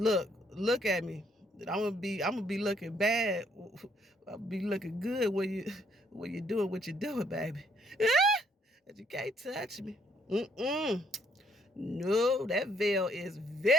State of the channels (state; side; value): normal; both; correlation 0.69